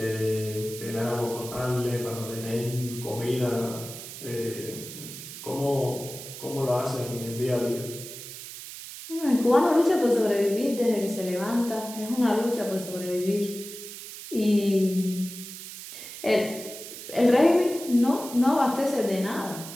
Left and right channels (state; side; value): noise; right; hiss, 12 dB below the sound